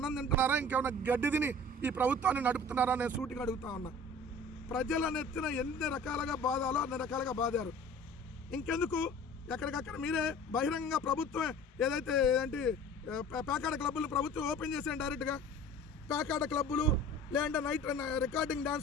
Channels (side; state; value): both; normal; correlation 0.44